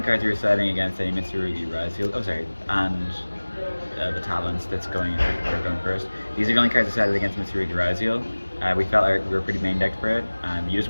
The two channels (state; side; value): inverted; both; correlation -1.00